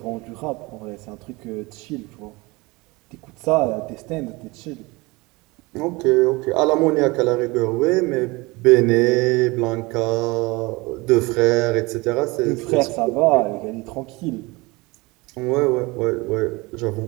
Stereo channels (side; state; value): left; quieter; 23.9 dB